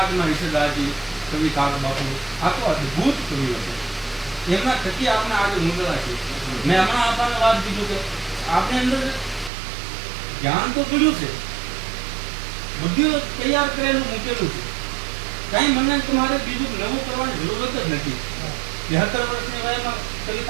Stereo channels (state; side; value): drops out; left; at 9.5 s